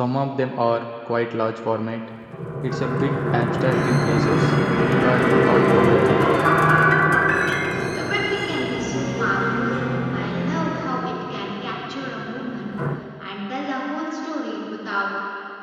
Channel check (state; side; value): identical; both; correlation 1.00